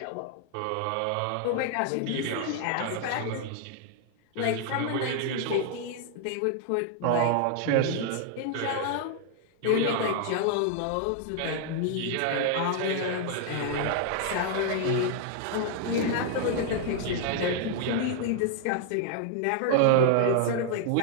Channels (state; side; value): different; both; correlation -0.01